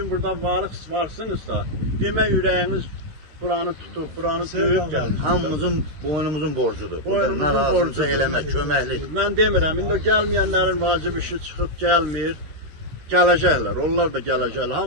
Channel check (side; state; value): left; late; 13 ms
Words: burada varsınızsa, demək ürəyiniz buranı tutub, buranı döyüb gəlmişsiniz. Hamımızın, boynumuzun borcudur. Boynumuzun borcudur. Eləmək, köməklik. Mən demirəm, indi o gəlməyənlərin vacib işi çıxıb gəlmir. Gələcəklər, onlar da gələcəklər.